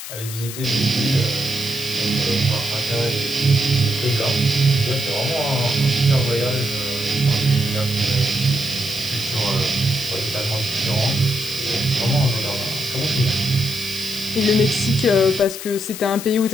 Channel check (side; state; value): left; noise; hiss, 10 dB below the sound